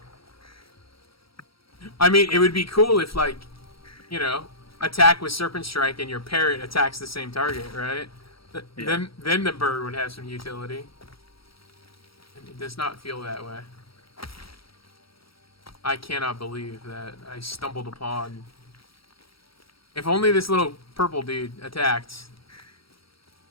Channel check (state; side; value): late; right; 0.75 ms